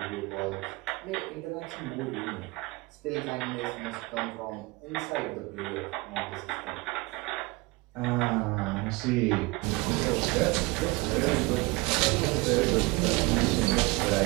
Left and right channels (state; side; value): quieter; left; 24.4 dB